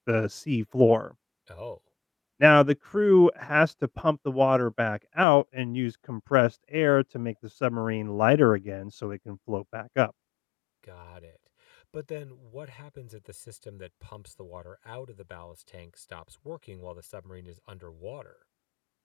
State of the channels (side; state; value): right; drops out; at 5.2 s